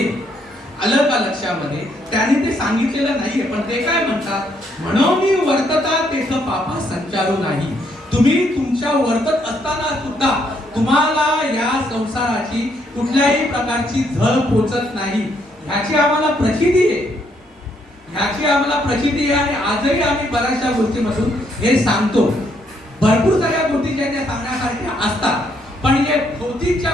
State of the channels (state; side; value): normal; both; correlation 0.72